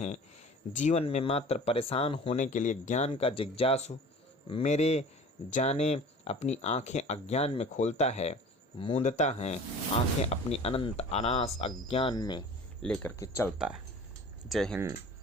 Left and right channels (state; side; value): normal; both; correlation 0.43